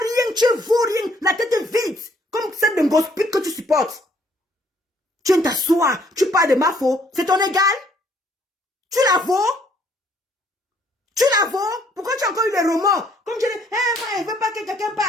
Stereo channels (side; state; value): both; normal; correlation 0.64